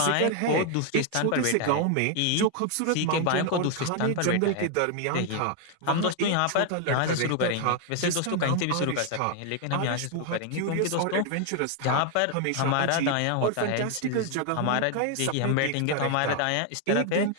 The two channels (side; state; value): both; different; correlation 0.00